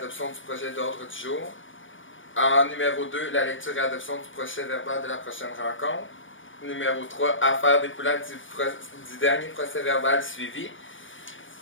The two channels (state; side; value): late; right; 0.57 ms